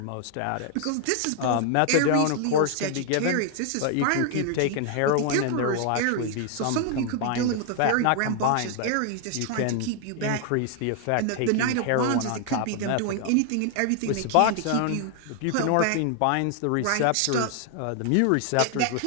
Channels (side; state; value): both; different; correlation 0.00